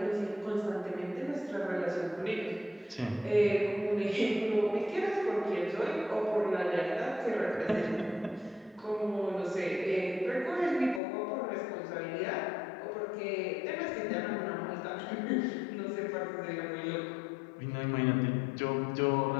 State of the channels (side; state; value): right; drops out; at 11.0 s